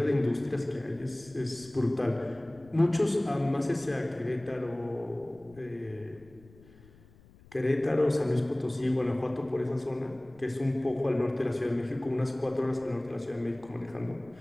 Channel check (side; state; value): left; noise; rumble, 25 dB below the sound